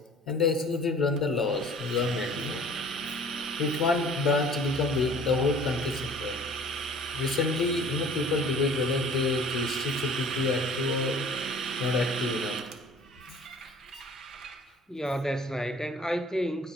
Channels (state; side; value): normal; both; correlation 0.49